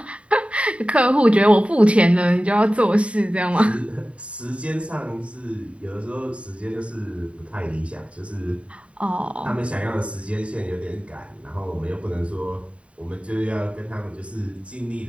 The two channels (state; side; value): late; left; 0.063 ms